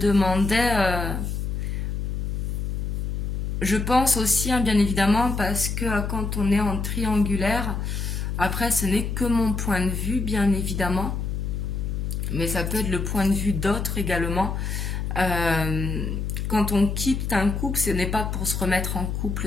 je pense aussi, bien évidemment, parce que quand on est en triangulaire, après, ce n'est que mon point de vue, bien évidemment. Mais ça peut être le point de vue d'autres également. quand on quitte un couple, ce n'est pas pour se remettre en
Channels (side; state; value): left; noise; hum, 2 dB below the sound